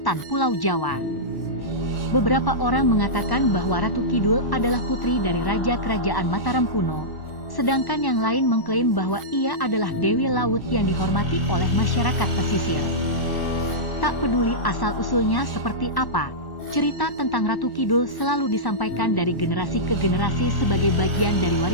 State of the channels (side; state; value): right; late; 1.1 ms